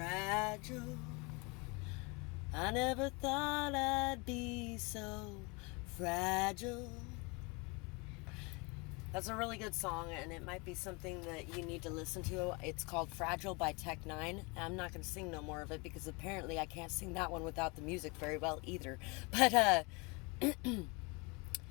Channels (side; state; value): right; quieter; 28.7 dB